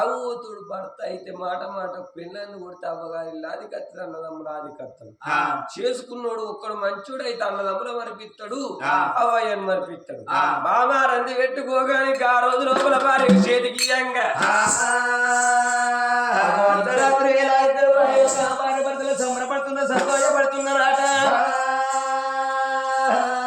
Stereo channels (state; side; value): identical; both; correlation 1.00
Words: భర్త అయితే మాట మాట పిల్లల్ని కొడితే అవ్వగారి ఇల్లు అది కత్తి అన్నదమ్ములు అది కత్తడు చేసుకున్నాడు ఒక్కడు మంచోడైతే అన్నదమ్ముల మరిపిస్తాడు అవ్వయ్యను మరిపిస్తాడు మామా రంది పెట్టుకోగానికి ఆ రోజు లోపల భార్య చేతికి ఇయ్యంగా అర్ధరాత్రి వేళ ఇద్దరు భార్య భర్తలు సంబరపడుతున్న సంతోషపడుతున్నారట